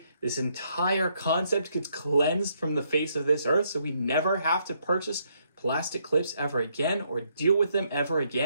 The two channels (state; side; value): inverted; both; correlation -0.73